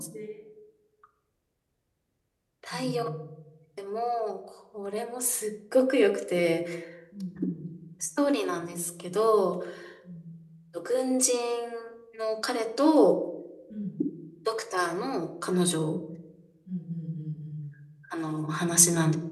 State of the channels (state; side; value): identical; both; correlation 1.00